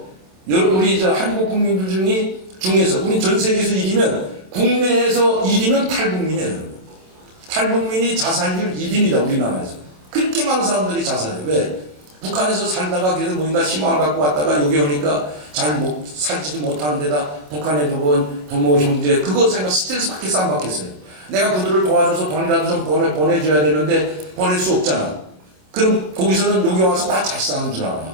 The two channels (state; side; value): late; left; 27 ms